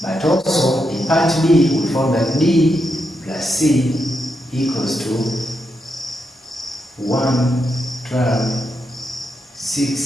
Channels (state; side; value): normal; both; correlation 0.83